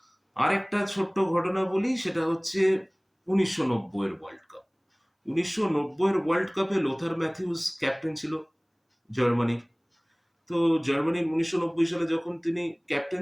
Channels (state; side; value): identical; both; correlation 1.00